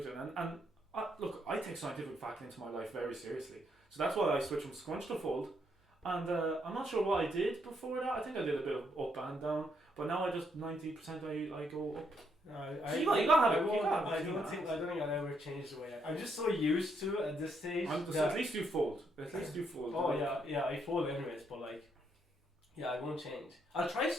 And look, I take scientific fact into my life very seriously, so that's why I switched from scrunch to fold. And I'm not sure what I did before that. I think I did a bit of up and down, but now I just 90% I go up. No, So you gotta have it. I don't think I'll ever change the way I'm just so used to it at this stage. At least you fold. At least you fold. Oh yeah, I fold anyways, but like, yeah, I won't change. I'll try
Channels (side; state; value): both; normal; correlation 0.75